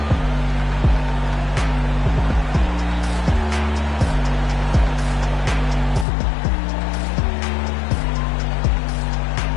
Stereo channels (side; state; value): right; drops out; at 6.1 s